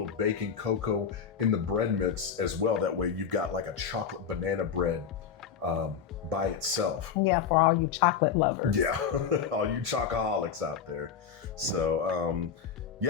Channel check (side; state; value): right; quieter; 7.2 dB